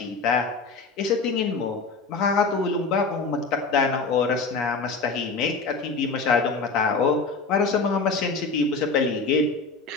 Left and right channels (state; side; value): quieter; right; 4.3 dB